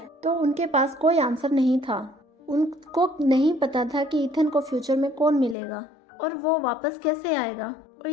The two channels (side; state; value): right; drops out; at 5.6 s